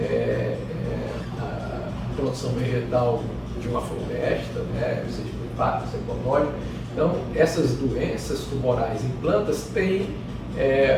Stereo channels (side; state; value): both; identical; correlation 1.00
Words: a produção vegetal de uma floresta, né, ou seja, o impacto econômico. Então, essas doenças tumorais em plantas têm